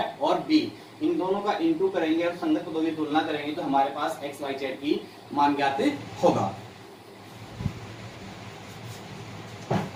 और B, इन दोनों का इंटू करेंगे और संगत पदों की तुलना करेंगे तो हमारे पास x y z की मान ज्ञात होगा।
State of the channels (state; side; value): identical; both; correlation 1.00